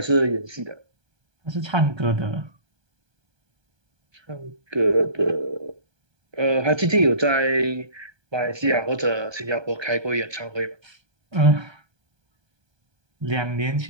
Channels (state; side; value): late; left; 1.2 ms